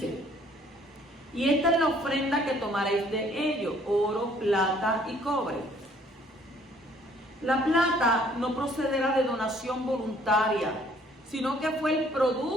y esta es la ofrenda que tomaréis de ellos, oro, plata y cobre. La plata no procederá de donación voluntaria, sino que fue el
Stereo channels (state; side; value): normal; both; correlation 0.60